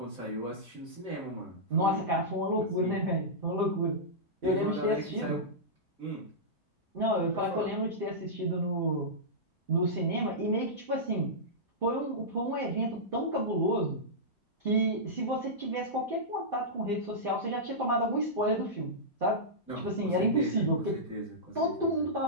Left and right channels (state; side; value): normal; both; correlation -0.14